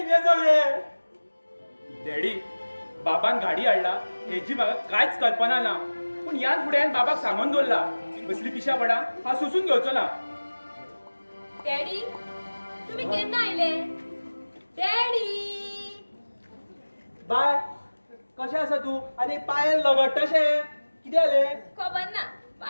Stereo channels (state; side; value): inverted; both; correlation -1.00